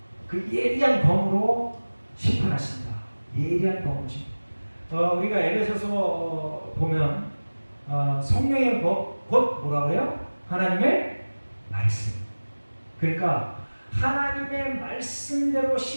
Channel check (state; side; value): inverted; both; correlation -1.00